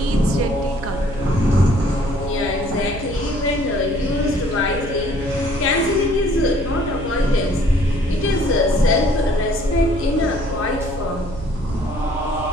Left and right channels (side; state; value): right; noise; hum, 12 dB below the sound